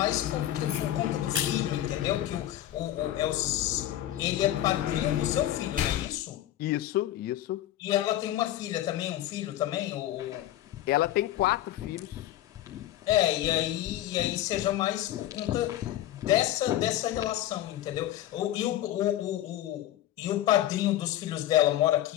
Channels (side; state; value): right; quieter; 13.3 dB